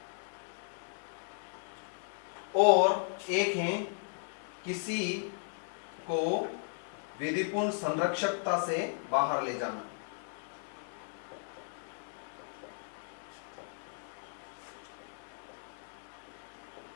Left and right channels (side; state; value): right; silent; 54 dB below the other